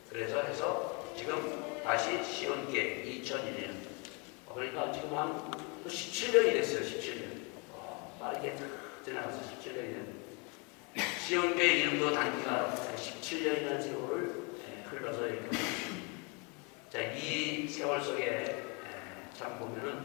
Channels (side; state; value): right; quieter; 32.2 dB